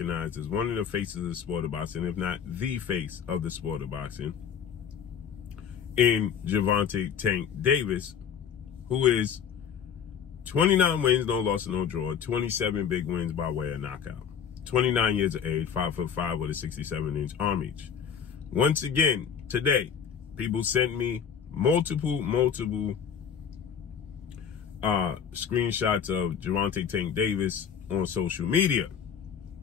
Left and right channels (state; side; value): quieter; right; 7.6 dB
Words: as one of the faces of the sport of boxing, if not the face of the sport of boxing, in Gervonta "Tank" Davis, who is 29 wins, no loss, no draw, 27 big wins by way of knockout. 29 years of age, 5'5" with a 67-inch arm reach. Once again, today, people sent me multiple screenshots of Gervonta "Tank" Davis on social media.